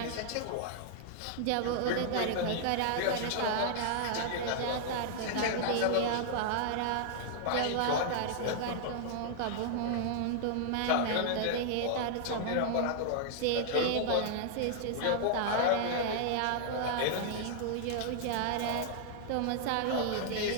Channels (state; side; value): different; both; correlation -0.01